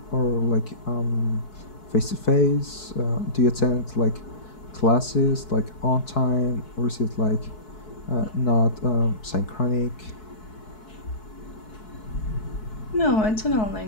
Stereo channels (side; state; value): right; late; 4.7 ms